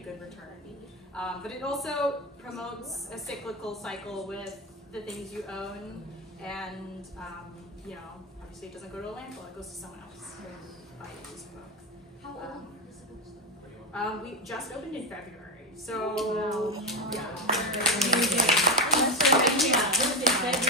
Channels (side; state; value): both; normal; correlation 0.13